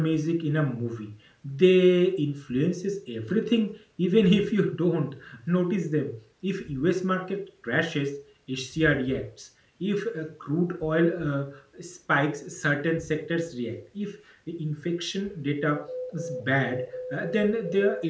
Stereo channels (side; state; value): both; identical; correlation 1.00